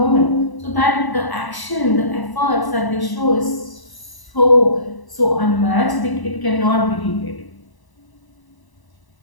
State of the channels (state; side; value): late; right; 1.0 ms